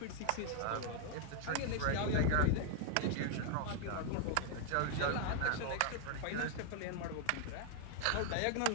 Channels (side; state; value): both; different; correlation 0.00